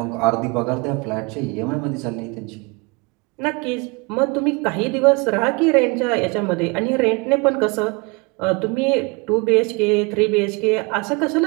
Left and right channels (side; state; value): left; quieter; 28.6 dB